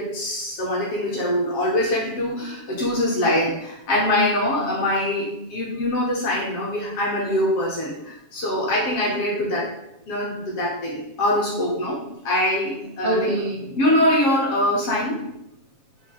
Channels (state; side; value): late; right; 7.3 ms